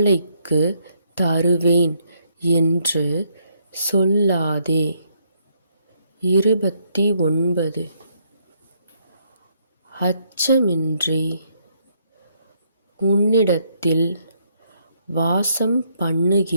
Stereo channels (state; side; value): inverted; both; correlation -0.73